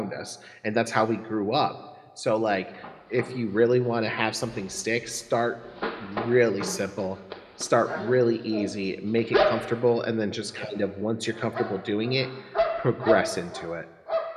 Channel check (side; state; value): both; identical; correlation 1.00